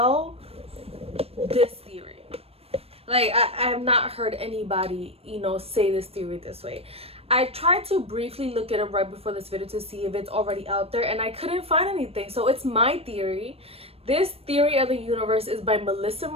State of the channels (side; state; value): left; late; 0.28 ms